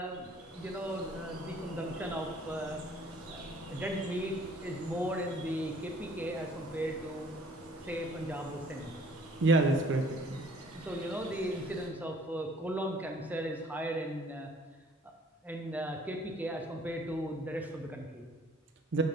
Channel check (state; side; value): normal; both; correlation 0.57